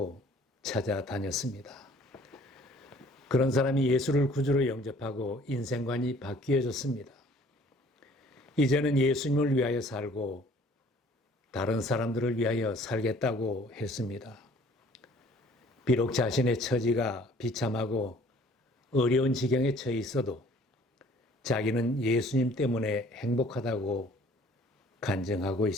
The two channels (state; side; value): normal; both; correlation 0.55